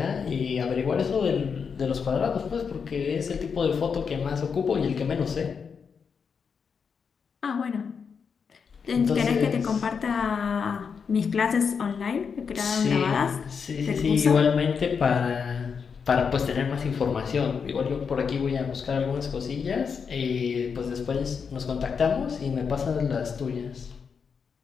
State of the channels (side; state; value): right; quieter; 6.1 dB